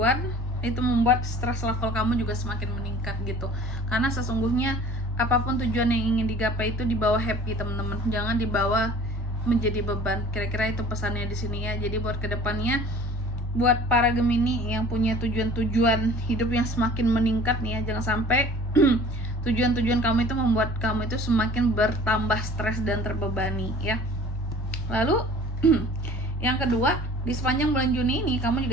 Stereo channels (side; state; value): both; normal; correlation 0.48